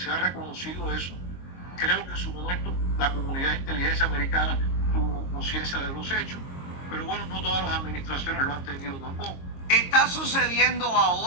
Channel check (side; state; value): right; late; 22 ms